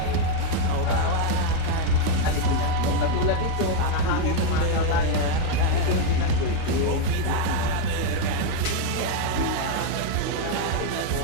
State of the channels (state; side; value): different; both; correlation 0.01